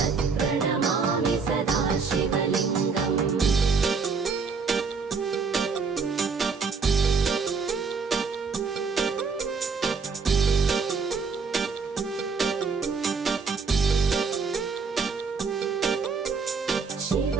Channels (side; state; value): left; quieter; 5.1 dB